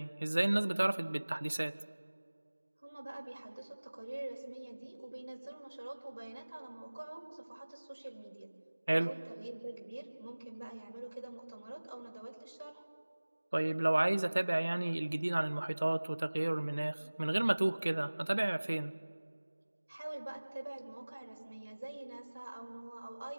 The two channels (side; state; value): both; inverted; correlation -1.00